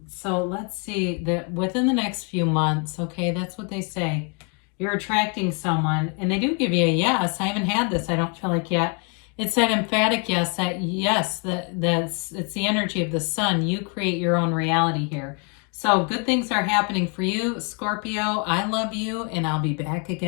So let's see that within the next few months, okay, that's what they say. You're attracting someone, and they do give you a yes. I haven't had this, I don't feel like yet. It's that emphatic yes, it's the energy of the sun. You create your own reality here. So good things are happening for you, Scorpio. I love you, and I'll be back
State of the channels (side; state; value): right; quieter; 36.5 dB